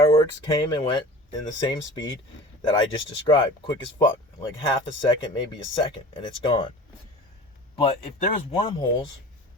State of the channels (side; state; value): both; normal; correlation 0.39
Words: came and went in the same speed that I just described, quick as fuck, like half a second, maybe a second, and it's gone. But if there's wormholes